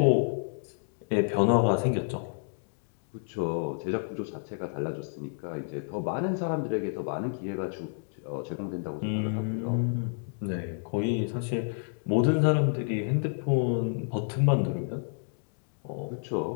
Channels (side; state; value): right; silent; digital silence